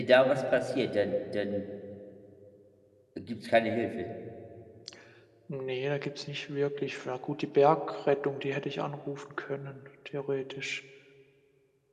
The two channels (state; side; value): identical; both; correlation 1.00